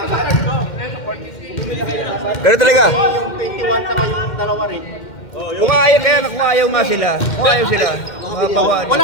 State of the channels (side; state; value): right; late; 2.1 ms